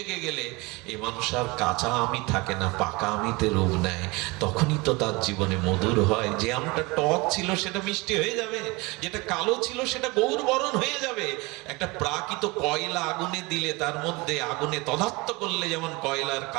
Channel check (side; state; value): left; quieter; 24.7 dB